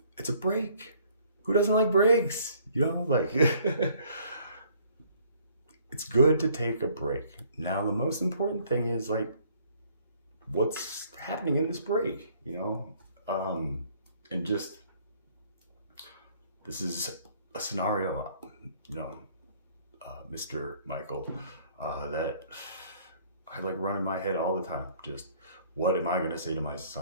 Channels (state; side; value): inverted; both; correlation -0.60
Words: it's a break. Who doesn't like breaks? Like, it's good to take a break. Now, the most important thing is, like, what's happening in this break, and just, this is a scenario, Mr. Michael, that I like run in my head all the time. Just, what am I going to say to my